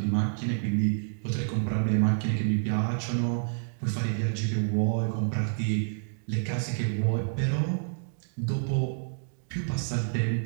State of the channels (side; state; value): left; silent; digital silence